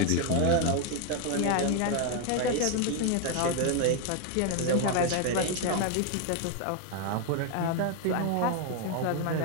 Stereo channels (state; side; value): different; both; correlation 0.01